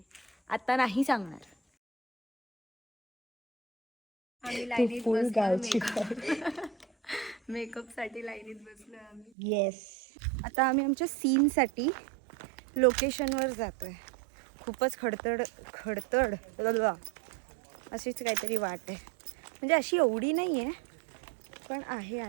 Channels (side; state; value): left; drops out; at 9.3 s